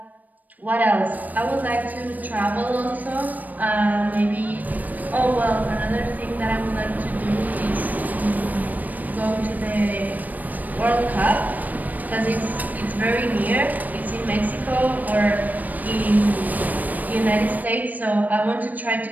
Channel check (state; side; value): late; left; 0.082 ms